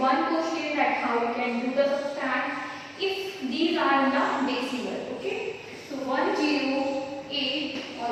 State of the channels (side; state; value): both; identical; correlation 1.00